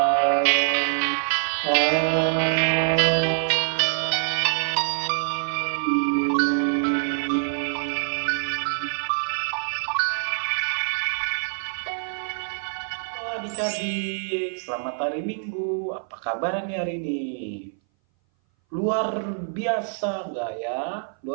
Adik-adik, selamat hari Minggu. Apa kabar nih hari ini? Luar biasa nggak ya?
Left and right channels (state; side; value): silent; left; 59 dB below the other